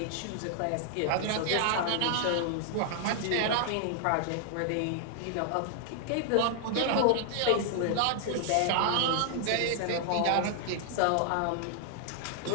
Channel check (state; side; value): different; both; correlation -0.01